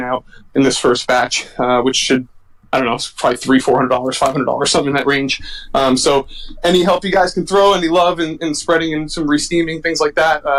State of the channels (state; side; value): identical; both; correlation 1.00